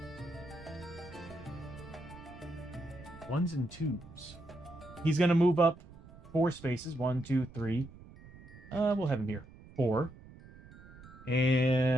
1s and 2s. He's going to move up 4 spaces. 1, 2, 3. We'll have him here. 4.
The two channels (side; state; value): right; noise; rumble, 19 dB below the sound